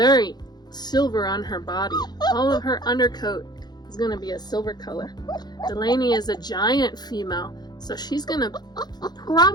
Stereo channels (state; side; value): late; right; 0.20 ms